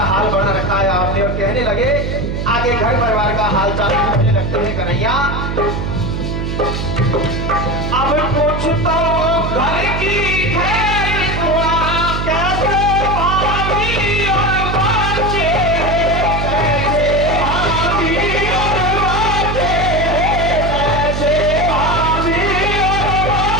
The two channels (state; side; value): noise; right; hum, 3 dB below the sound